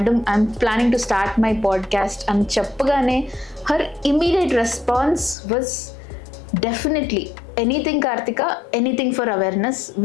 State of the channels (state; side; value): drops out; right; at 5.4 s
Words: I'm planning to start my podcast and cheppagane her immediate response was definitely anything Karthika, anything for awareness,